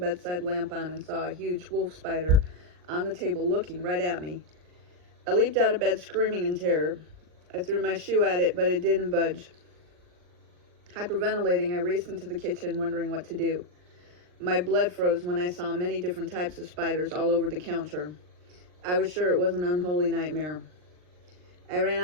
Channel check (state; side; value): late; left; 39 ms